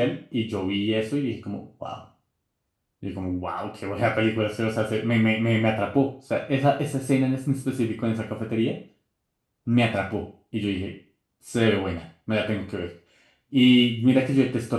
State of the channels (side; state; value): both; identical; correlation 1.00